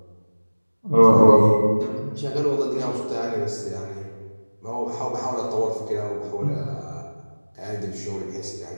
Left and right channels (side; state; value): both; inverted; correlation -1.00